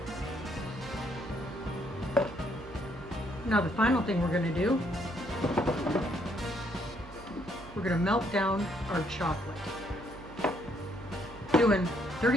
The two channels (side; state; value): right; noise; hum, 17 dB below the sound